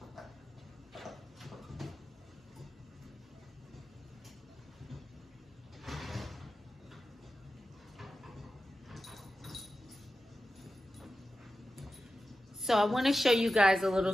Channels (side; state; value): both; normal; correlation 0.92